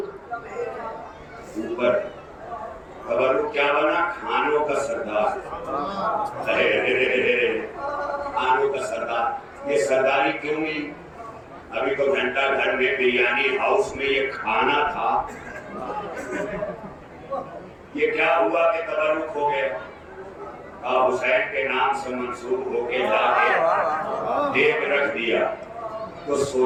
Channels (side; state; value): both; identical; correlation 1.00